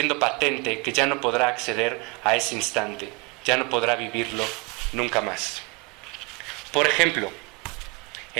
patente que ya no podrá acceder a ese instante, ya no podrá vivirlo nunca más. Por ejemplo,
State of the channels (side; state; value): left; quieter; 28.2 dB